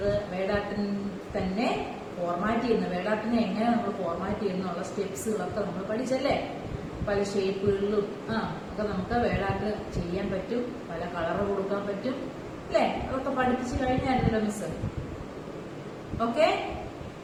വേഡ് ആർട്ടിന് തന്നെ ഫോർമാറ്റ് ചെയ്യുന്നത്, വേഡ് ആർട്ടിനെ എങ്ങനെ നമ്മൾ ഫോർമാറ്റ് ചെയ്യുന്നുള്ള സ്റ്റെപ്സുകളൊക്കെ നമ്മൾ പഠിച്ചല്ലേ? പല ഷേപ്പുകളിലും ഒക്കെ നമുക്ക് വേഡ് ആർട്ട് ചെയ്യാൻ പറ്റും, പല കളറ് കൊടുക്കാൻ പറ്റും അല്ലേ? അതൊക്കെ പഠിപ്പിച്ചു കഴിഞ്ഞായിരുന്നല്ലോ miss. Okay,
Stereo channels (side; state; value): both; identical; correlation 1.00